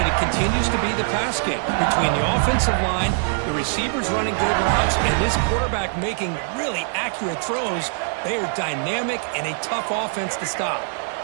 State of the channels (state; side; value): silent; left; 64 dB below the other